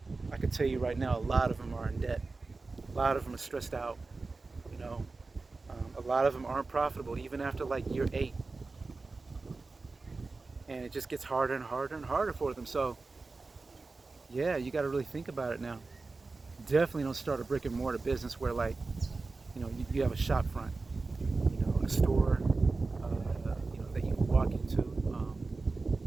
I can tell you right now, a lot of them are in debt. A lot of them are stressed out. A lot of them aren't profitable even after like year 8, and it just gets harder and harder and harder for them. So yeah, you got to really think about it now. Definitely don't start a brick and mortar business where, like, you have a shop front, a store, that you can walk into,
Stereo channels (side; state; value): left; quieter; 3.8 dB